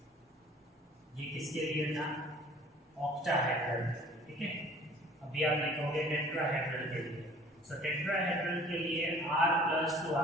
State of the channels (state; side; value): normal; both; correlation 0.51